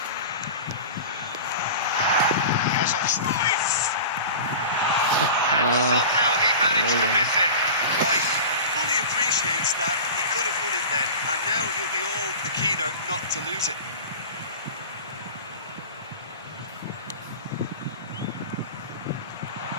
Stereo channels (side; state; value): both; inverted; correlation -0.33